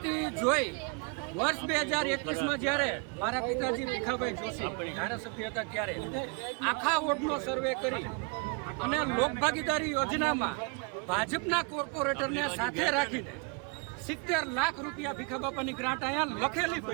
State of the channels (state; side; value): quieter; left; 32.4 dB